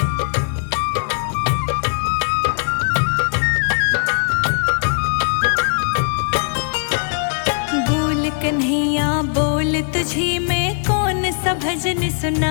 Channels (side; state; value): right; silent; digital silence